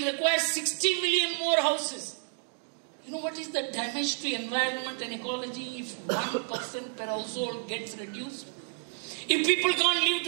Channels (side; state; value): left; silent; digital silence